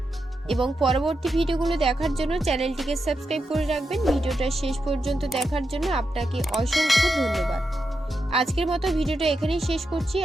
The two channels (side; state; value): both; normal; correlation 0.87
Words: এবং পরবর্তী ভিডিওগুলো দেখার জন্য চ্যানেলটিকে সাবস্ক্রাইব করে রাখবেন। ভিডিওটা শেষ পর্যন্ত দেখার জন্য আপনাকে অসংখ্য ধন্যবাদ। আজকের মতো ভিডিওটা এখানেই শেষ করছি।